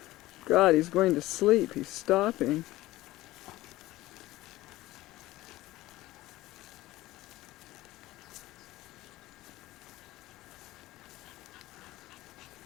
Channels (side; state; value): right; quieter; 17.4 dB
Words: God, he's going to sleep. He's stopping.